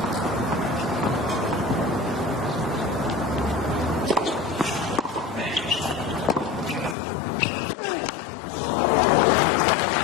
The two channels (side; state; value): right; drops out; at 7.0 s